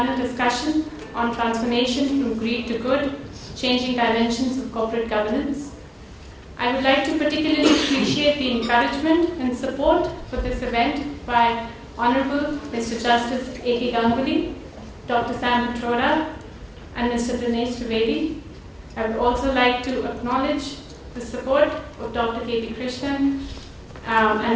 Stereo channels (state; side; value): identical; both; correlation 1.00